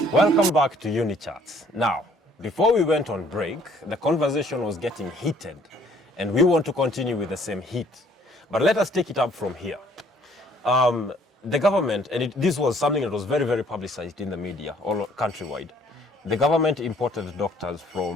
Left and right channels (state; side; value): normal; both; correlation 0.61